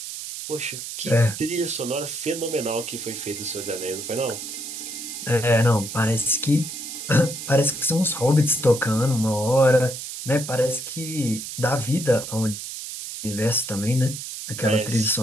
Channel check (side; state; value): right; noise; hiss, 8 dB below the sound